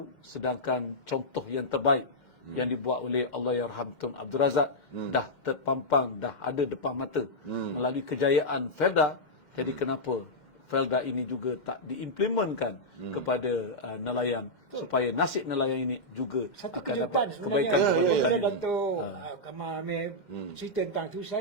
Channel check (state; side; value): late; right; 2.1 ms